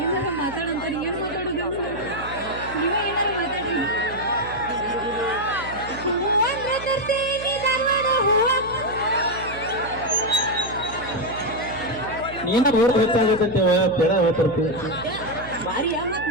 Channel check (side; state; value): right; noise; hum, 13 dB below the sound